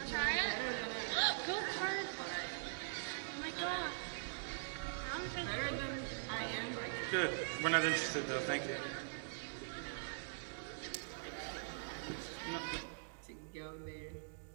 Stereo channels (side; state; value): left; silent; digital silence